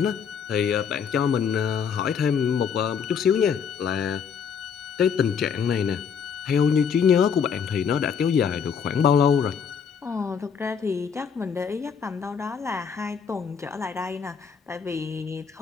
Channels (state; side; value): quieter; right; 6.8 dB